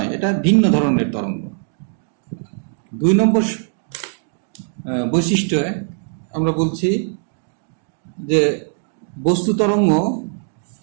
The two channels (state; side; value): silent; left; 58 dB below the other